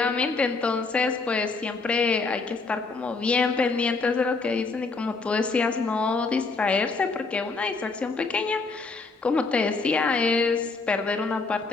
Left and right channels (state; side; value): quieter; right; 4.0 dB